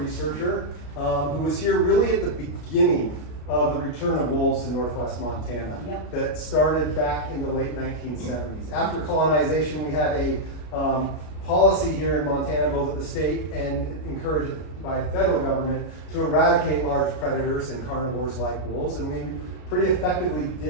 who was here really at the beginning of the return of wolves in northwest Montana. Yep. That started back in the late 1970s. After colonization, we had a policy here in Montana, both at the state and encouraged by federal government, to eradicate large predators and carnivores like wolves, and we pretty effectively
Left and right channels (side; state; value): right; late; 33 ms